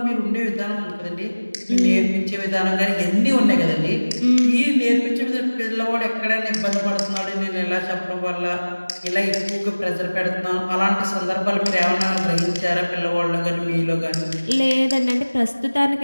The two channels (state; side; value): inverted; both; correlation -1.00